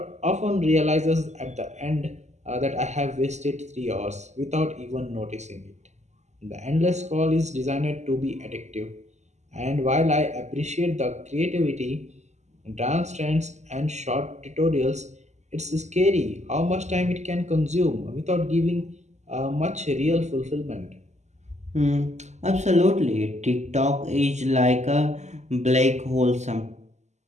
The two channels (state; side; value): late; left; 0.33 ms